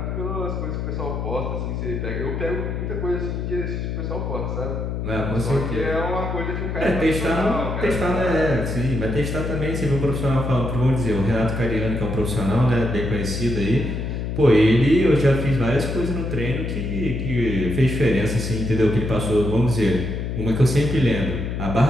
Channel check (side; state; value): left; noise; hum, 3 dB below the sound